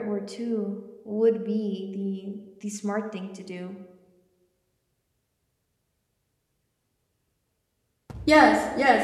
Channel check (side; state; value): both; identical; correlation 1.00